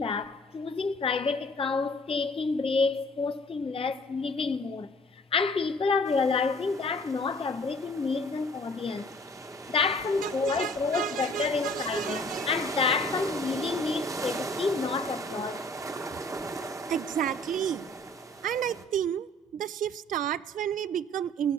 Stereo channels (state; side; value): normal; both; correlation 0.54